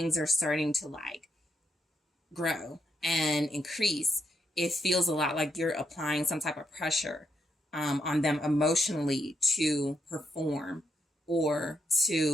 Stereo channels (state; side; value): normal; both; correlation 0.79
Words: are starting to like grow and increase, it feels a lot like you're applying some type of pressure on them emotionally to perform or